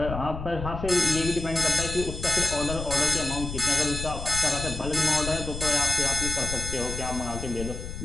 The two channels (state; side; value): noise; left; rumble, 7 dB below the sound